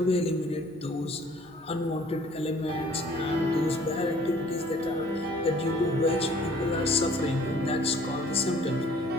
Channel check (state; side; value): noise; right; hum, 29 dB below the sound